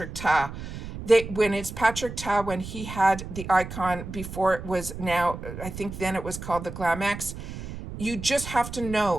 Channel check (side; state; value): right; noise; rumble, 10 dB below the sound